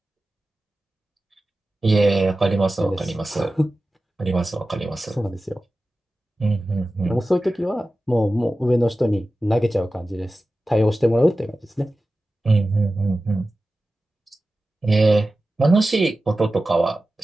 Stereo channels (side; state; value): both; normal; correlation 0.95